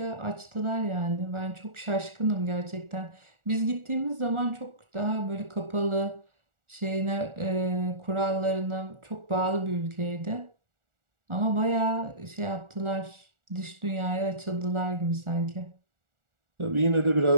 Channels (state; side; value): late; left; 1.4 ms